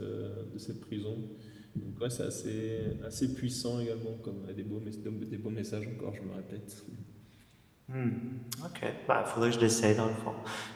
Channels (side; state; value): both; identical; correlation 1.00